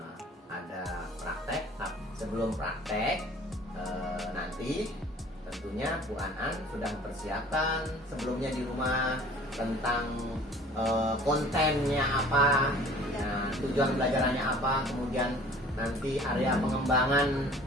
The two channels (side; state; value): both; normal; correlation 0.49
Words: Ada praktek. Sebelum praktek nanti tentunya Bu Anan sudah mempersiapkan sebelumnya di rumah tentang kontennya apa, tujuan belajarannya apa, kemudian nanti area pengembangan